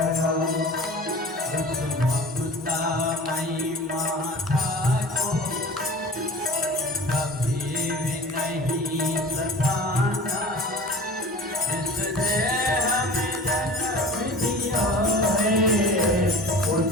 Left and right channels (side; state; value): both; normal; correlation 0.40